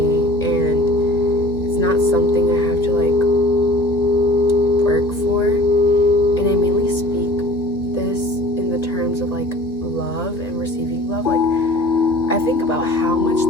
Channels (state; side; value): late; right; 2.1 ms